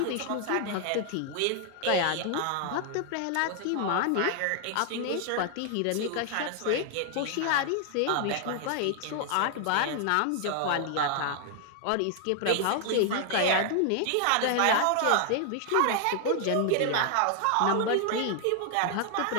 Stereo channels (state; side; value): different; both; correlation 0.00